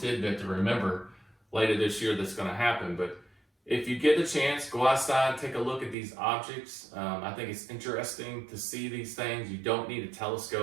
to remember later this year that's going to happen. But if you get the chance, go outside, take a look at these objects. I think it's interesting to see these things. You don't need a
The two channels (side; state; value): left; drops out; at 6.0 s